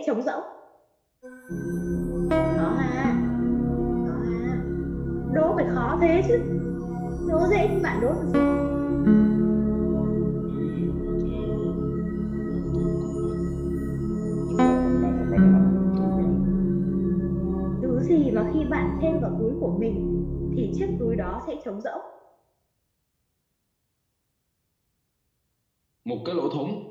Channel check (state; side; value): identical; both; correlation 1.00